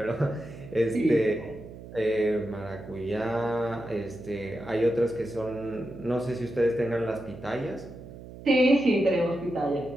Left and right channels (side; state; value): right; noise; hum, 15 dB below the sound